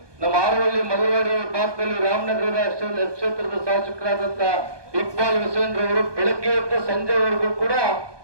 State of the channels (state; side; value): late; left; 1.2 ms